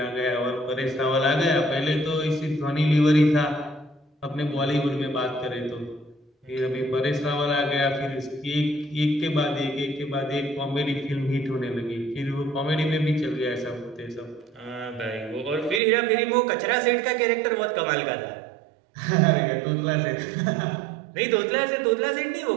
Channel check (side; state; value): left; drops out; at 15.8 s